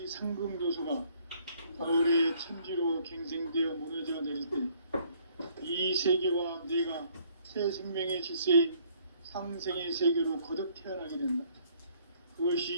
상금조소가 가을의 천지로 갱생되어 무너져 내릴 때 이 세계와 내가 새 생명의 질서인 상생의 세계로 거듭 태어나게 된다.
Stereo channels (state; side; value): inverted; both; correlation -0.63